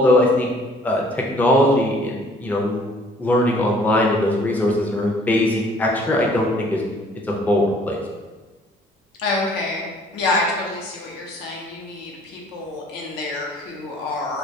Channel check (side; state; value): both; normal; correlation 0.57